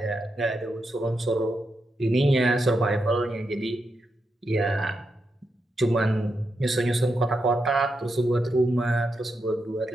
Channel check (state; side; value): normal; both; correlation 0.85